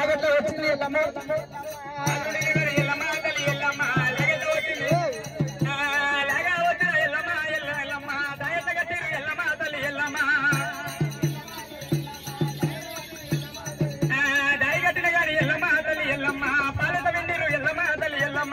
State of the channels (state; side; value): identical; both; correlation 1.00